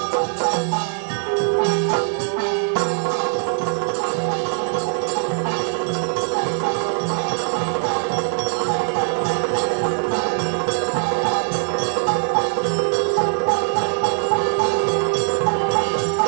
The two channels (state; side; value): silent; left; digital silence